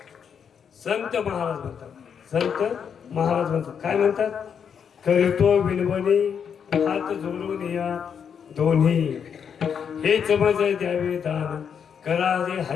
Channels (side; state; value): right; quieter; 7.3 dB